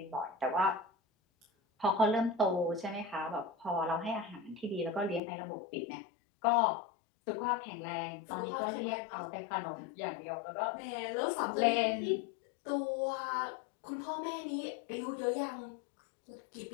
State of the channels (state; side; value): drops out; right; at 5.2 s